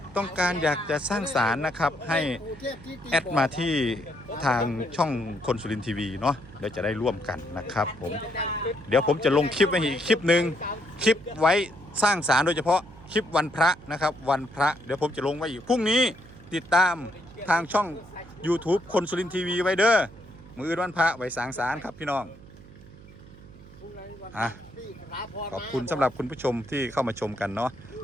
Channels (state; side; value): noise; right; hum, 20 dB below the sound